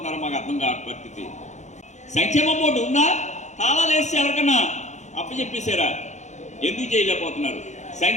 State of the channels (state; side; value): late; right; 0.34 ms